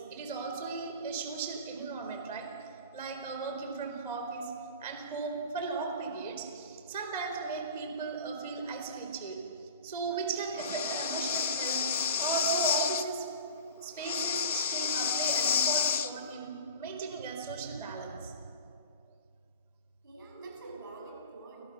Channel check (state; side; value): inverted; both; correlation -0.37